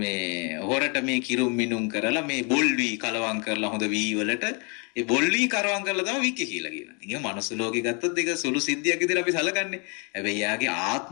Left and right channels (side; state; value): right; quieter; 34.7 dB